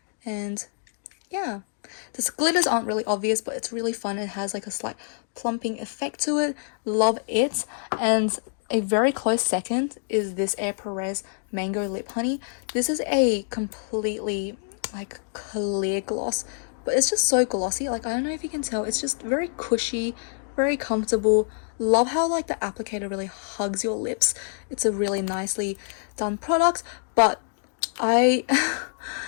And yeah, the glitters aren't really obvious, but it's really fun. It has like a slight plumping effect to it. Love it. And a very close second is this Air Perez Mango Lip Honey. This is a completely like clear gloss, but it's just so glossy. Like, I don't know if you can tell, it's just very cushy, very comfortable. Love how like the applicator really hugs your lips. It's a really nicely done product, but I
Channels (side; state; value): right; silent; digital silence